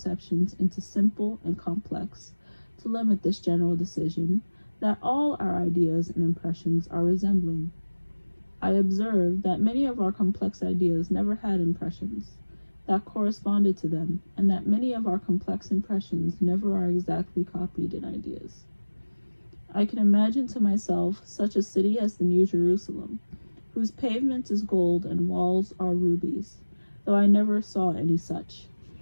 into simple and complex, to limit this general decision, that all our ideas and impressions are resembling. I observe that many of our complex ideas never had impressions that corresponded to them, and that many of our complex impressions never are exactly copied in ideas. I can imagine to myself such a city as the New Jerusalem, whose pavement is gold and walls are rubies, though I never saw any such.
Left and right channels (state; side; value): inverted; both; correlation -1.00